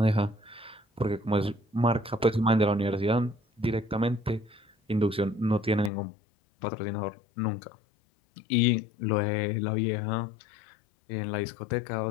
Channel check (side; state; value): right; drops out; at 5.9 s